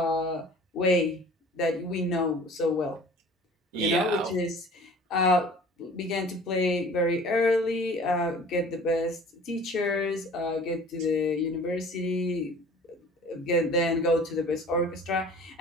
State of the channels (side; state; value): both; normal; correlation 0.46